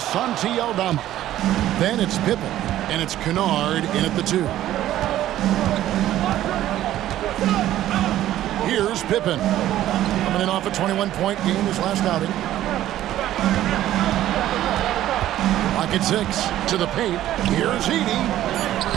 Santi Aldama. Then it's Pippen, and it's Kennard in at the 2. Here's Pippen, coming in off a 21-point game his last outing. Clock at 6, to the paint. Here's Edey.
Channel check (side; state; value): left; quieter; 13.2 dB